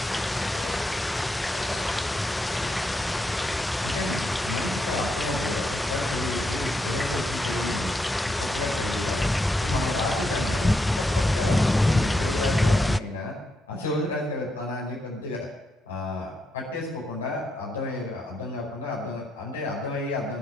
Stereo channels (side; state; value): both; normal; correlation 0.81